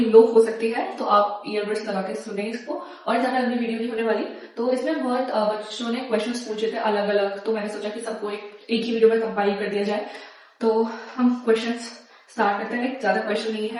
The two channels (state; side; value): identical; both; correlation 1.00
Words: लो हो सकती है तो आप ईयरबड्स लगा के सुने इसको। और ज़्यादा लंबी वीडियो नहीं होने वाली। तो इसमें बहुत बच्चों ने क्वेश्चंस पूछे थे अलग अलग, तो मैंने सोचा कि सबको एक ही वीडियो में कंपाइल कर दिया जाए। तो हम क्वेश्चंस स्टार्ट करते हैं। ज़्यादा क्वेश्चन नहीं